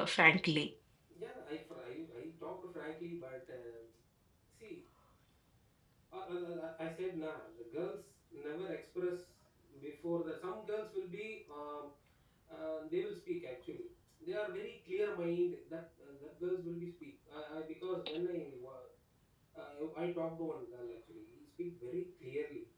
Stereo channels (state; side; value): identical; both; correlation 1.00